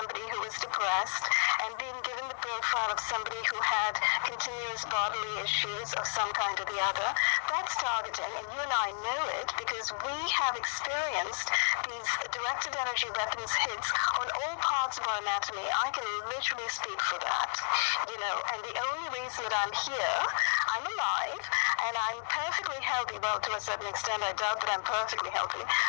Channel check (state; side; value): silent; right; digital silence